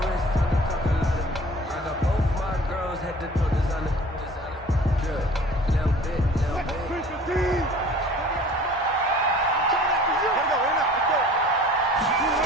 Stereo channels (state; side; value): normal; both; correlation 0.47